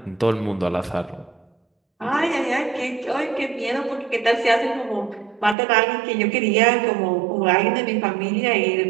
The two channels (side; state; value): left; drops out; at 5.6 s